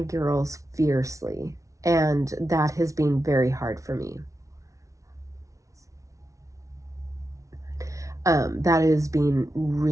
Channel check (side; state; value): left; late; 0.15 ms